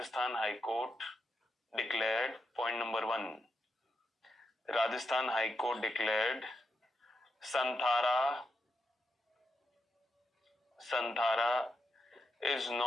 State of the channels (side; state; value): both; normal; correlation 0.84